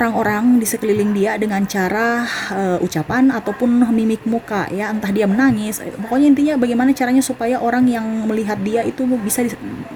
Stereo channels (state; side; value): identical; both; correlation 1.00